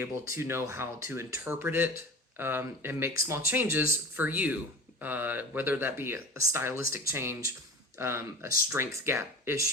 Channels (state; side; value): normal; both; correlation 0.36